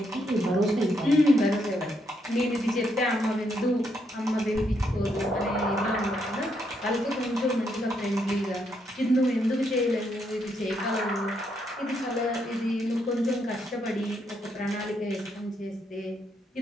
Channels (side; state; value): both; normal; correlation 0.77